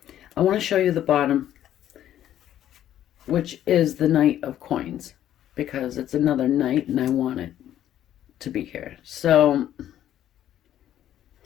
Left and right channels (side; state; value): right; quieter; 11.6 dB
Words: I want to show you the bottom, which is the Knight of Coins, because it's another knight and I want it to be here. So